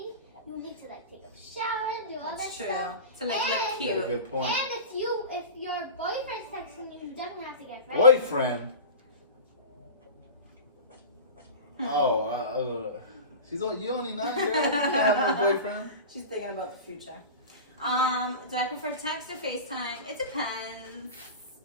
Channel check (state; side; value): inverted; both; correlation -0.31